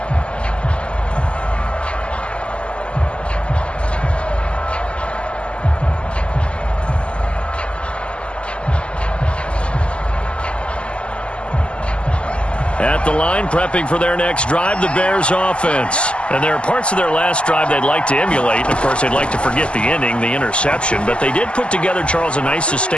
At the line, prepping for their next drive, the Bears offense. And there are parts of their last drive they'd like to emulate. And, of course, they'd like to forget the inning, the interception. But they did put together, Charles, a nice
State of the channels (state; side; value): late; right; 0.054 ms